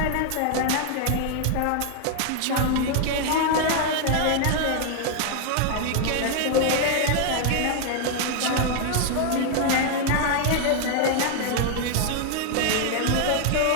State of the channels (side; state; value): both; different; correlation 0.00